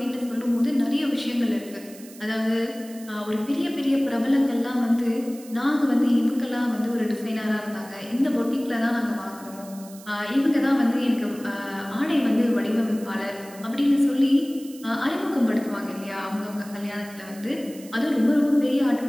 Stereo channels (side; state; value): right; noise; hiss, 20 dB below the sound